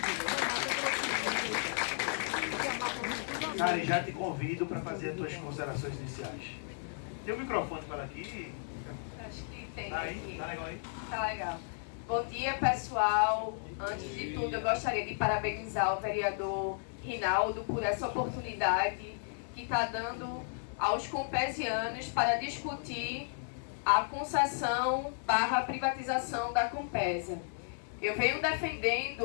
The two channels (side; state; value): right; silent; digital silence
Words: Cari, já te convido para fazer as tuas considerações iniciais. Tem um microfone para aqui? Acho que tem Tá aí? aqui. Tá legal aí? Tá legal. Bom dia, pessoal. Antes de tudo, eu gostaria de parabenizar o vereador Rinaldo por essa oportunidade que está dando aos compesianos para discutir a concessão / privatização da Compesa. Eu venho